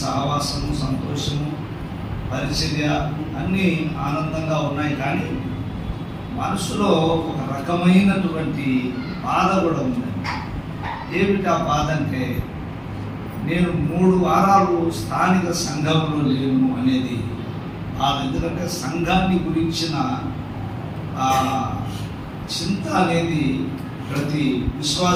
సహవాసము, సంతోషము, పరిచర్య అన్నీ ఆనందంగా ఉన్నాయి. కానీ మనసులో ఒక రకమైనటువంటి బాధ కూడా ఉంది. ఏమిటి ఆ బాధ అంటే, నేను 3 వారాలు స్థానిక సంఘంలో లేను అనేది బాధ. ఎందుకంటే సంఘాన్ని గురించిన చింత అనేది ప్రతి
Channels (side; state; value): both; identical; correlation 1.00